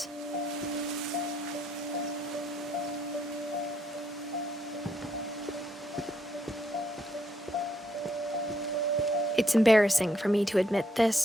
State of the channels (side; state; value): both; normal; correlation 0.74